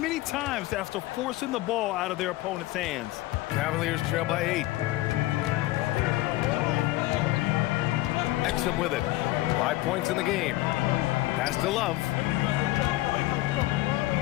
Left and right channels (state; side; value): quieter; right; 17.5 dB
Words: times after forcing the ball out of their opponent's hands. Cavaliers trail by 8. Exum with it. 5 points in the game. Pass to Love.